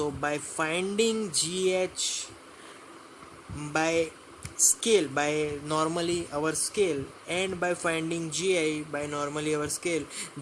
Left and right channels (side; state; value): both; identical; correlation 1.00